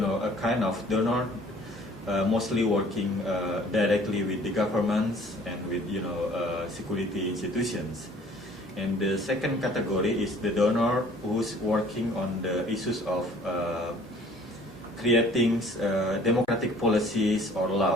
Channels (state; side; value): normal; both; correlation 0.53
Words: kind of donor mostly working directly with the governments and with security institutions. And the second category is the donor who's working on the issues of creating democratic policies or